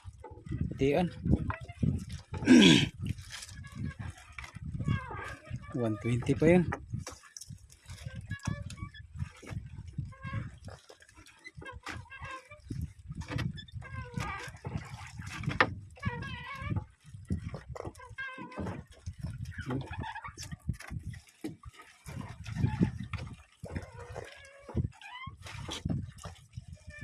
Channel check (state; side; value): identical; both; correlation 1.00